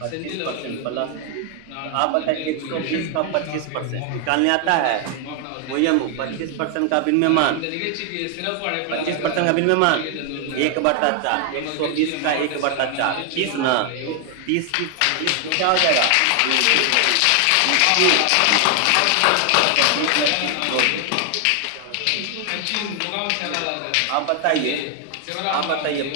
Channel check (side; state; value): both; different; correlation 0.00